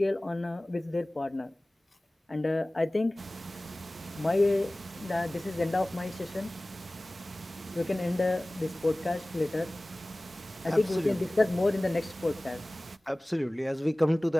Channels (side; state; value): both; normal; correlation 0.98